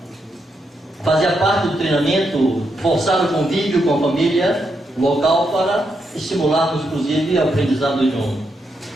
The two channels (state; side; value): normal; both; correlation 0.82